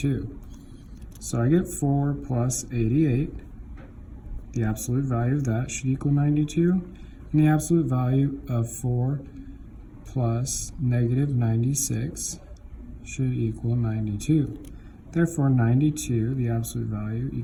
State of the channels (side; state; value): both; identical; correlation 1.00